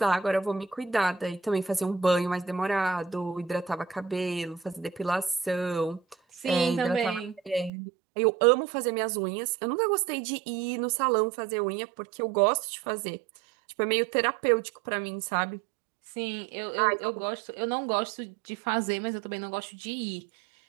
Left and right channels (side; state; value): left; drops out; at 7.7 s